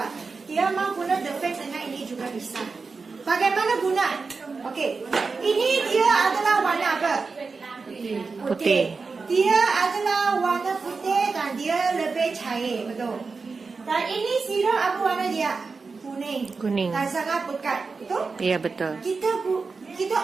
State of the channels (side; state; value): left; quieter; 4.5 dB